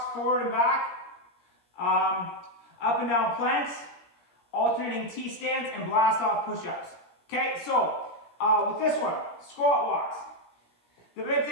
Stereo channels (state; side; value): late; right; 17 ms